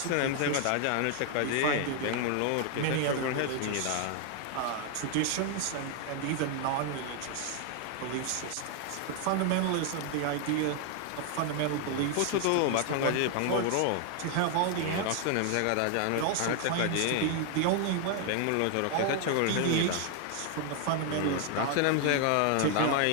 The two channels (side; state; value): both; different; correlation 0.00